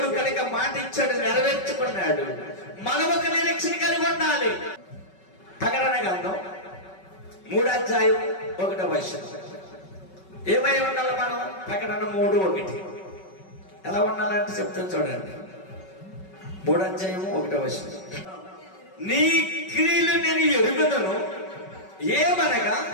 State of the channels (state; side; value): late; right; 5.3 ms